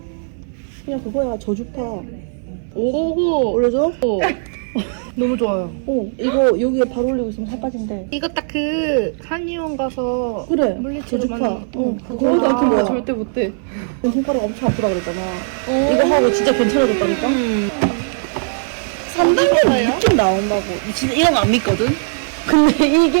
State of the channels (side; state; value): left; silent; 59 dB below the other